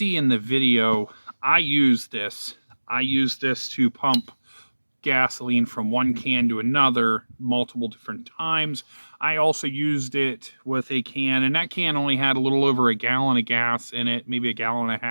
in the video, I use this to pump gasoline from one can to another multiple different times. I also used it with a can, and that can only had a little over a gallon of gas in it, maybe a gallon and a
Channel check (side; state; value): both; inverted; correlation -1.00